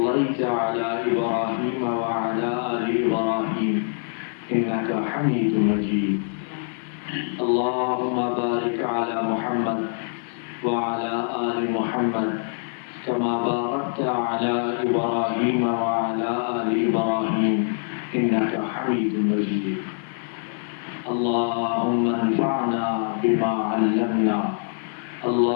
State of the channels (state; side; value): silent; right; 62 dB below the other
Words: على إبراهيم وعلى آل إبراهيم إنك حميد مجيد. اللهم بارك على محمد وعلى آل محمد كما باركت على إبراهيم وعلى آل إبراهيم إنك حميد مجيد. اللهم انفعنا بما علمنا